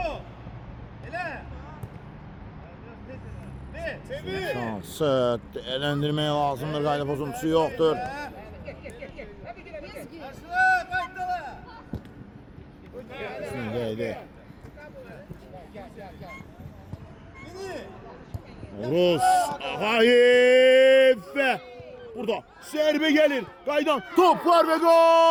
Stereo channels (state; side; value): identical; both; correlation 1.00